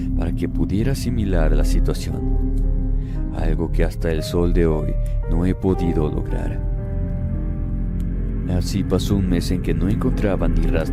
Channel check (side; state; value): both; identical; correlation 1.00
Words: para que pudiera asimilar la situación, algo que hasta el sol de hoy no he podido lograr. Así pasó un mes en que no encontraba ni